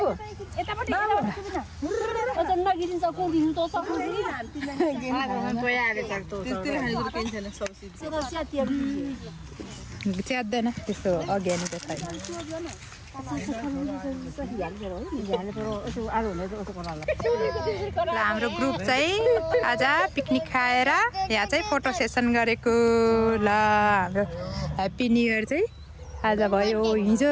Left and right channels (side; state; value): both; identical; correlation 1.00